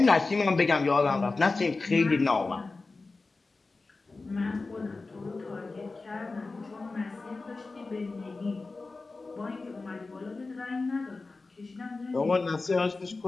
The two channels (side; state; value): right; quieter; 3.7 dB